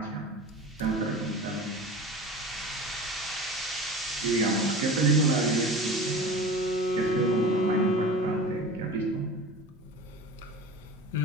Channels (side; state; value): both; normal; correlation 0.35